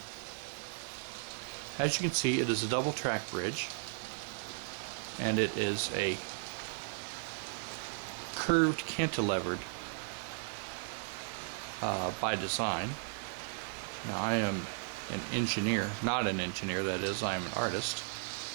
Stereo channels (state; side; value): silent; left; digital silence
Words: As you can see, it is a double track bridge, and it is a curved cantilevered by design. Now, I am an engineer, not an engineer, that is, I am an artist.